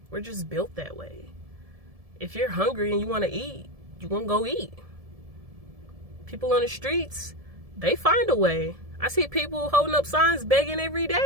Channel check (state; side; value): late; left; 1.7 ms